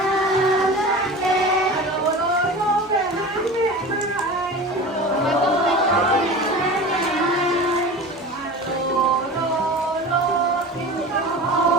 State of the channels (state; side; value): normal; both; correlation 0.34